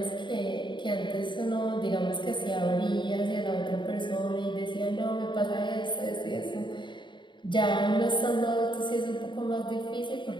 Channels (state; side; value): late; right; 0.23 ms